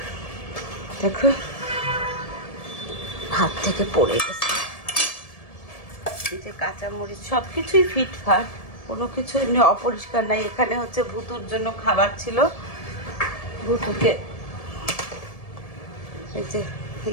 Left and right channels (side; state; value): right; late; 1.7 ms